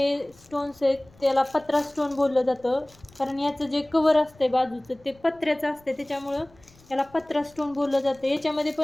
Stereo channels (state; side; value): noise; left; rumble, 28 dB below the sound